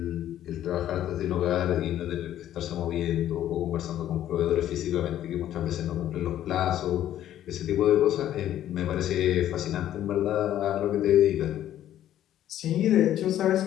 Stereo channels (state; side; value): quieter; right; 11.9 dB